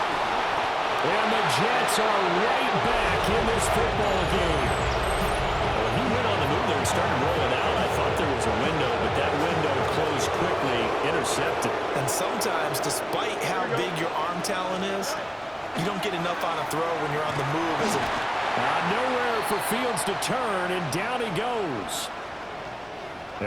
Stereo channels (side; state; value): both; identical; correlation 1.00